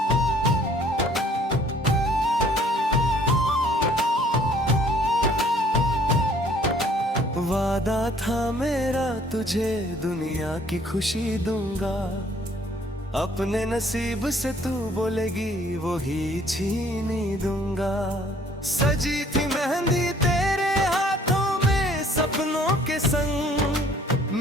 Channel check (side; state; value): both; normal; correlation 0.58